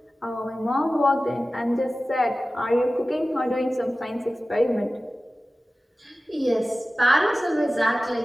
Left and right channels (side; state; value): both; normal; correlation 0.96